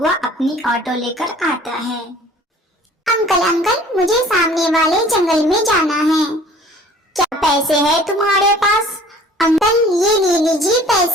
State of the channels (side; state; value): both; normal; correlation 0.50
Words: अपनी ऑटो लेकर आता है। अंकल अंकल, मुझे सामने वाले जंगल में जाना है। क्या पैसे है तुम्हारे पास? अंकल ये ले लीजिए